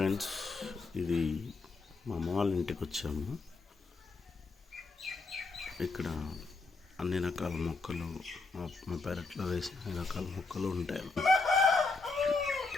ఇది మా అమ్మ వాళ్ళ ఇంటికి వచ్చాము. ఇక్కడ అన్ని రకాల మొక్కలు మా పెరట్లో వేసిన అన్ని రకాల మొక్కలు ఉంటాయి.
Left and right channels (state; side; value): quieter; right; 3.8 dB